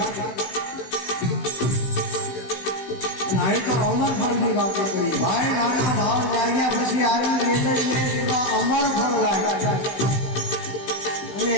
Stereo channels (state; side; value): late; right; 16 ms